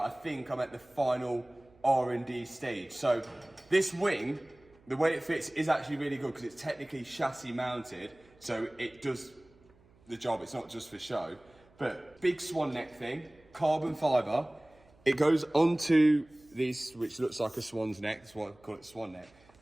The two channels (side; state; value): right; noise; hum, 29 dB below the sound